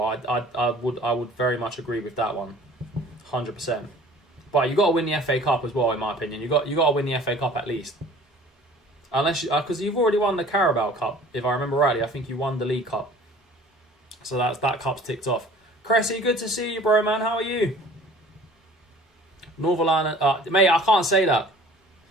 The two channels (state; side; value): normal; both; correlation 0.48